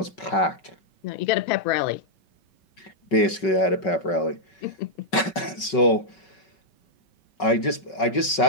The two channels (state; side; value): late; right; 5.3 ms